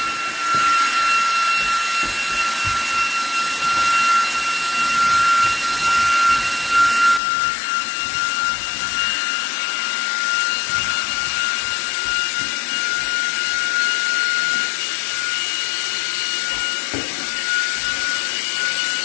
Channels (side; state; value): right; drops out; at 7.2 s